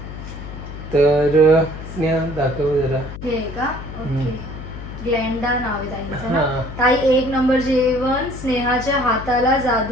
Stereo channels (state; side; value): noise; left; hum, 11 dB below the sound